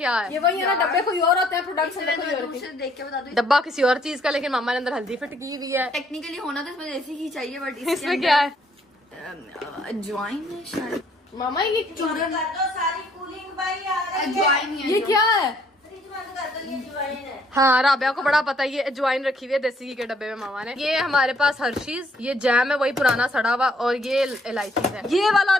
है? ये वही है ना, डब्बे कोई और होते हैं, प्रोडक्ट्स देख के बता दो। डब्बा किसी और चीज का, लेकिन मामा ने अंदर हल्दी फिट की हुई है। टेक्निकली होना तो इसमें देसी घी चाहिए, बट इसमें क्या है? अजवाइन है शायद। मामा ये चूरन कर दो, सारी कूलिंग भाई आ रही है। अजवाइन ही है। ये क्या है? फ्रिज बंद कर दो, ये अजवाइन है। हाँ, राबिया को बड़ा पता है। ये अजवाइन रखी हुई है देसी घी के डब्बे में मामा ने। ये हमारे पास हर्शीज, ये जैम है वही पुराना सड़ा हुआ, और ये इलायची है। ये वाला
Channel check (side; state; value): both; normal; correlation 0.66